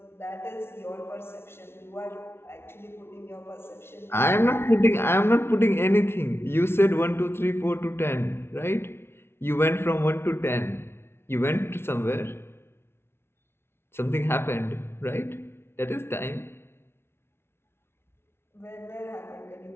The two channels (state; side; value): late; right; 0.12 ms